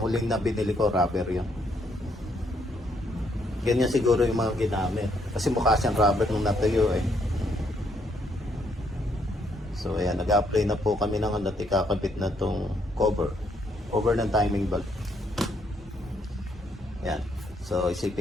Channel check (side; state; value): both; normal; correlation 0.72